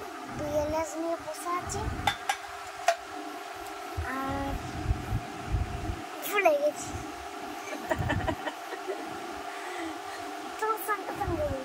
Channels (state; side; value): identical; both; correlation 1.00